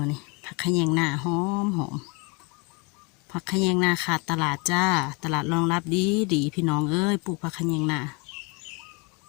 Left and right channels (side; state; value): right; quieter; 30.5 dB